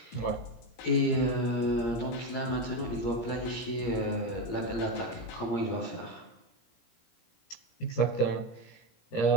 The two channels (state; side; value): late; right; 17 ms